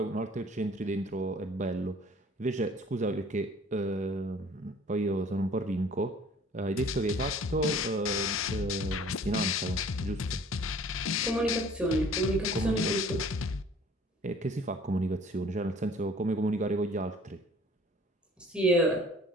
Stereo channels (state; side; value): normal; both; correlation 0.52